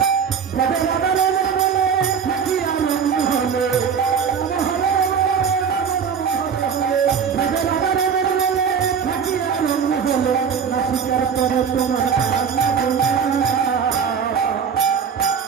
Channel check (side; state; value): left; quieter; 6.7 dB